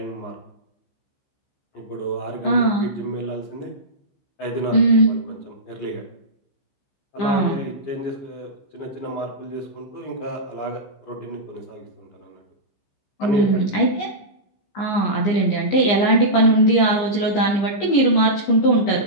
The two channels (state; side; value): late; right; 15 ms